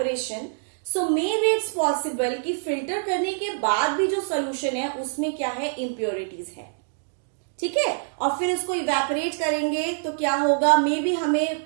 so maybe it's possible कि filter करने के बाद भी जो solution है उसमें क्या है? Impurities है. ठीक है? और फिर इसको evaporate करेंगे तो क्या होगा? Maybe हमें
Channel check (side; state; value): left; silent; digital silence